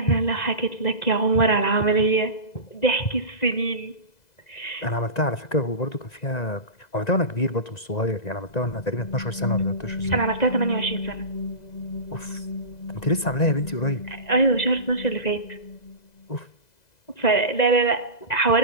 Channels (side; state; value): right; late; 2.0 ms